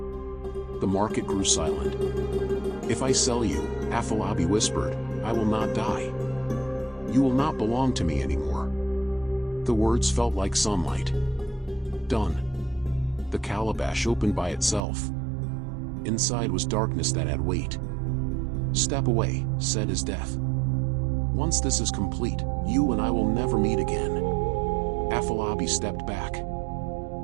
The market grew silent. If I sell you, Afolabi whispered, I will not die. You will not belong to me anymore. The words felt like sunlight. Done. The calabash opened by itself. Inside was darkness that had weight. Step away, said his death. Once this is complete, you and I will never meet again. Afolabi stepped back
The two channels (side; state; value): left; drops out; at 14.8 s